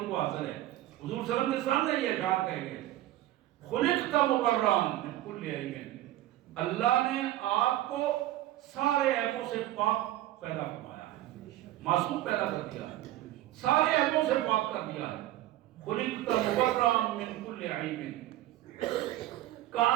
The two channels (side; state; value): left; quieter; 14.9 dB